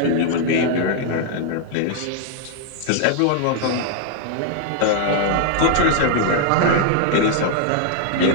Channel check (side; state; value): both; different; correlation 0.00